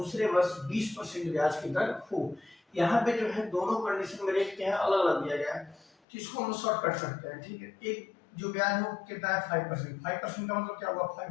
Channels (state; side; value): drops out; right; at 5.9 s